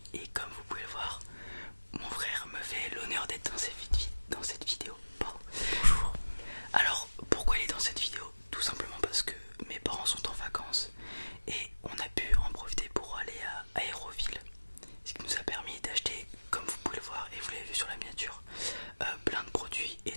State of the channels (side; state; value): both; inverted; correlation -1.00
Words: et comme vous pouvez le voir, mon frère me fait l'honneur d'être dans cette vidéo. Pardon. Bonjour. Alors pourquoi il est dans cette vidéo? Tout simplement parce que mes parents sont en vacances et on a pu en profiter pour aller à Aéroville. Ce qui nous a permis d'acheter, comme vous pouvez le voir et vous l'avez vu sur la miniature, plein de produits